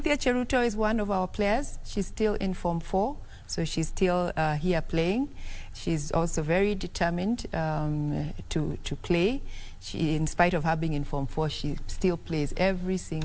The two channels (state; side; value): identical; both; correlation 1.00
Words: Cheruto is one of our players. She's still in Form 4, so she's still here playing. She's also very determined to play. She, in spite of her being in Form 4, she still plays every